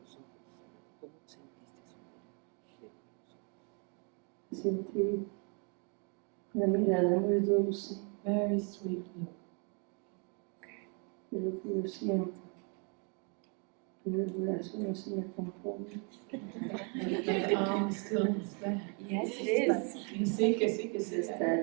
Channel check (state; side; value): quieter; left; 37.2 dB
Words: sentiste su mirada? Sentí una mirada muy dulce Very sweet look. de lo que yo siento. Pero el brazo no se me compone. The arm still is there. Yes, it is. Sí, que sí, que sí. Está